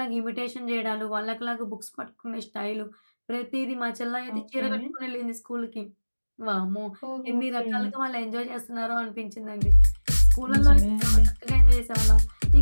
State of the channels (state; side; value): inverted; both; correlation -1.00